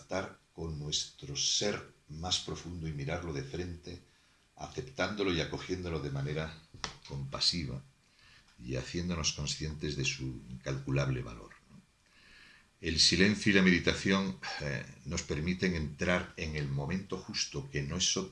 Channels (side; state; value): both; identical; correlation 1.00